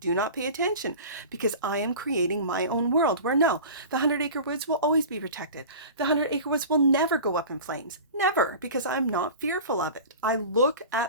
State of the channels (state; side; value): inverted; both; correlation -0.37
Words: not pay attention because I am creating my own world where no, the 100-acre woods will always be protected. The 100-acre woods will never go up in flames. Never, because I'm not fearful of it. I look